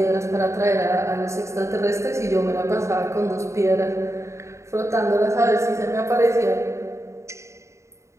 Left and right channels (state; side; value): late; left; 0.14 ms